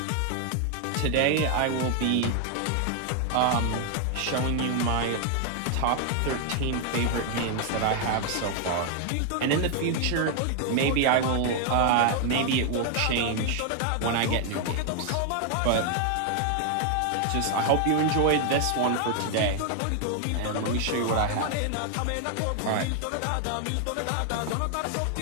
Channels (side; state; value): both; different; correlation 0.00